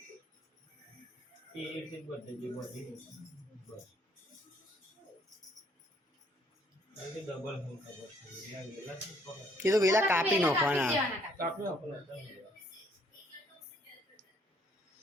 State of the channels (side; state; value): both; normal; correlation 0.65